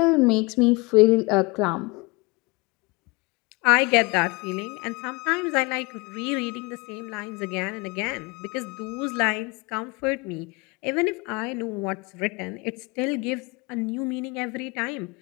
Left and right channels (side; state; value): right; quieter; 26.7 dB